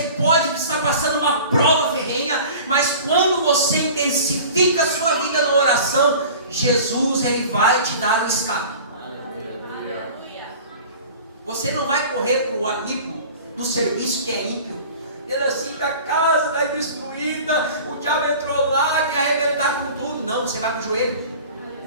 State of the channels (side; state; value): both; inverted; correlation -0.42